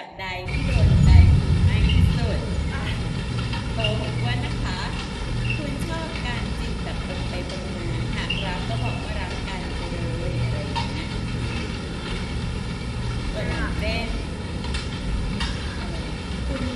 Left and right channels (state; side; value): identical; both; correlation 1.00